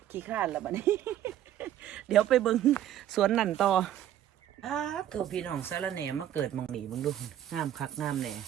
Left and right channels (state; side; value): quieter; left; 11.6 dB